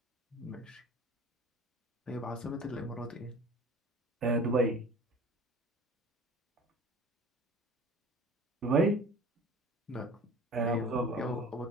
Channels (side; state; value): both; normal; correlation 0.43